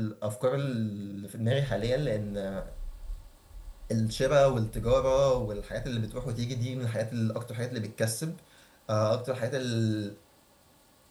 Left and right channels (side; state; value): both; identical; correlation 1.00